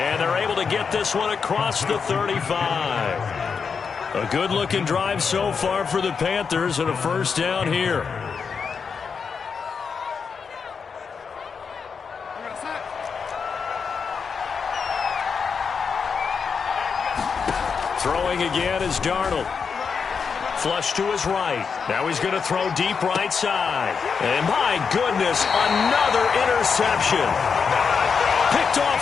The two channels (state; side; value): quieter; right; 5.8 dB